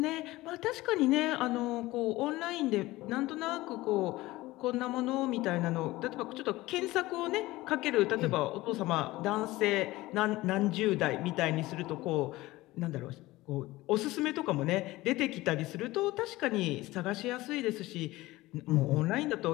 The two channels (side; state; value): right; quieter; 18.7 dB